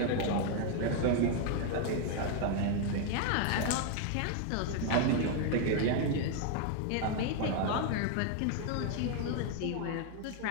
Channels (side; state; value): both; different; correlation 0.01